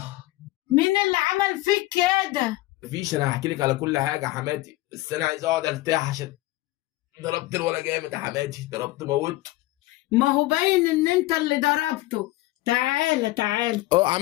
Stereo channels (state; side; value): quieter; right; 18.5 dB